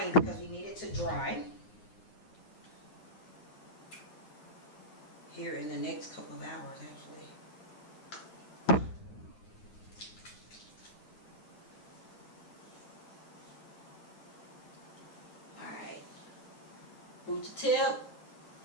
because we need it to dry here in the next couple of hours, actually. Root to tip,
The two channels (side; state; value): right; late; 9.6 ms